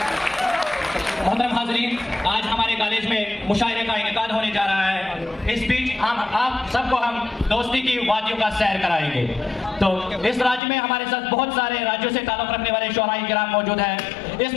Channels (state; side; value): drops out; right; at 10.6 s